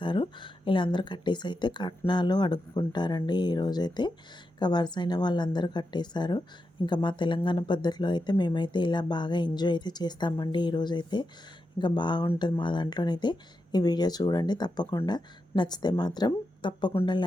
ఇలా అందరూ కట్టేసి అయితే కట్నాలు అడుక్కుంటారండి. ఈరోజైతే ఇంకా వరుస అయిన వాళ్ళందరూ కట్టేశారు. ఇంకా మా తెలంగాణ పద్ధతిలో అయితే మేమైతే ఇలా బాగా ఎంజాయ్ అయితే చేస్తామండి. ఈరోజైతే ఇంకా బాగుంటుంది మా దాంట్లోనైతే. ఈ వీడియో చూడండి తప్పకుండా. నచ్చితే మాత్రం తప్పకుండా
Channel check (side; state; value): both; normal; correlation 0.88